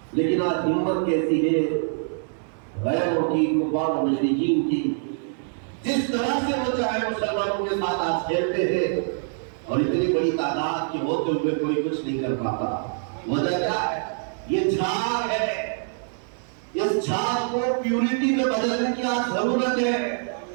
لیکن آج ہمت کیسی ہے غیروں کی، کفار و مشرکین کی. جس طرح سے وہ چاہے مسلمانوں کے ساتھ آج کھیلتے ہیں، اور اتنی بڑی تعداد کے ہوتے ہوئے کوئی کچھ نہیں کر پاتا. وجہ کیا ہے؟ یہ جھاگ ہے. اس جھاگ کو پیورٹی میں بدلنے کی آج ضرورت ہے،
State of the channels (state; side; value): silent; left; digital silence